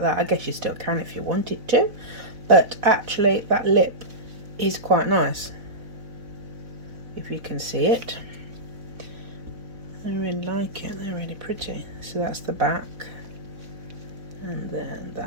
that. I guess you still can if you wanted to, but actually that lip is quite nice, if you can see it. I really like it, they're really pretty. So that's the back, and then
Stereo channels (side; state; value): left; late; 4.0 ms